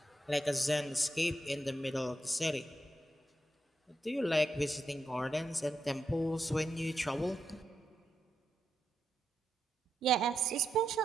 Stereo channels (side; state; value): both; normal; correlation 0.84